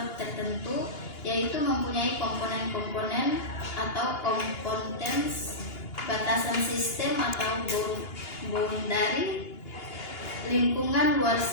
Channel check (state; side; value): late; right; 2.9 ms